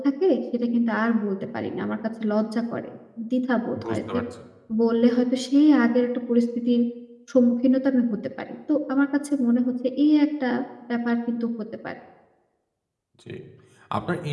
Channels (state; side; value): identical; both; correlation 1.00